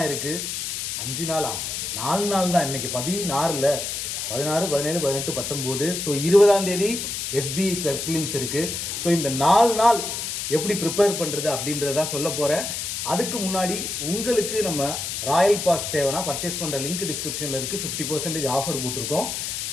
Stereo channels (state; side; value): noise; left; hiss, 4 dB below the sound